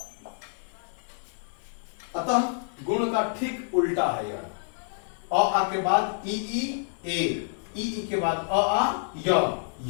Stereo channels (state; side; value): silent; right; digital silence